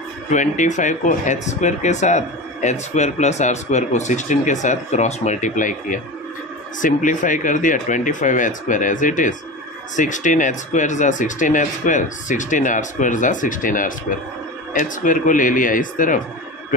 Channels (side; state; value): both; normal; correlation 0.28